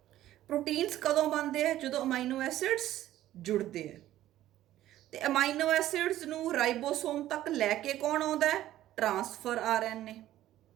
Proteins ਕਦੋਂ ਬਣਦੇ ਆ? ਜਦੋਂ ਅਮਾਈਨੋ ਐਸਿਡਸ ਜੁੜਦੇ ਆ। ਤੇ ਅਮਾਈਨੋ ਐਸਿਡਸ ਨੂੰ ਰਾਈਬੋਸੋਮ ਤੱਕ ਲੈ ਕੇ ਕੌਣ ਆਉਂਦਾ ਹੈ? Transfer RNA।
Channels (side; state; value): left; quieter; 13.7 dB